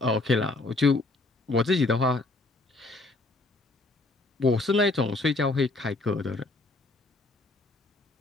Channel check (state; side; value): quieter; right; 3.1 dB